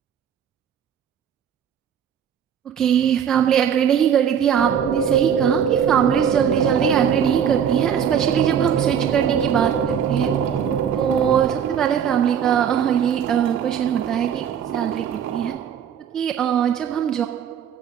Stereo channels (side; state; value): left; quieter; 8.3 dB